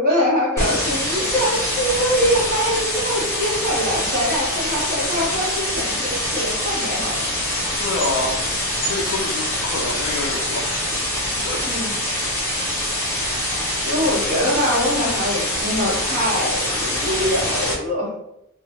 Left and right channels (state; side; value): normal; both; correlation 0.00